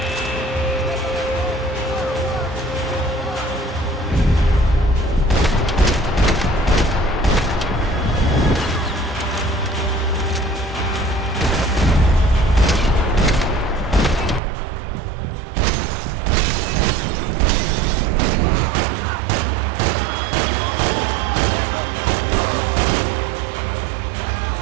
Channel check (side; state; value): left; drops out; at 14.4 s